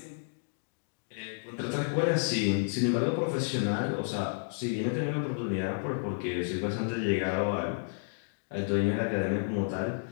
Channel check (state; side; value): silent; right; digital silence